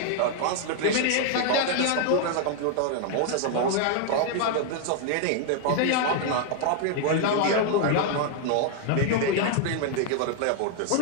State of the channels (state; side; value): different; both; correlation 0.00